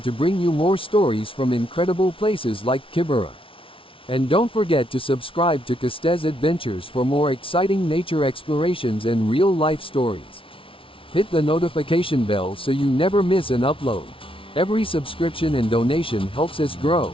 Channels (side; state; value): right; late; 0.25 ms